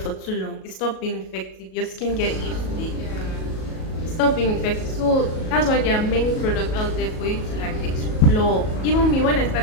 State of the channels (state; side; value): late; right; 37 ms